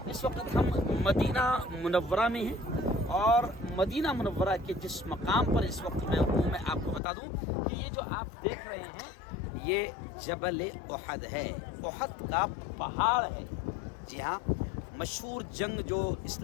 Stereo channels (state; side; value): drops out; right; at 7.0 s